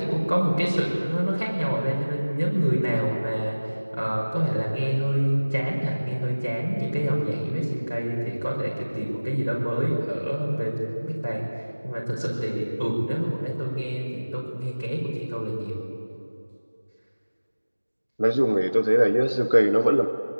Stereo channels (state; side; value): inverted; both; correlation -1.00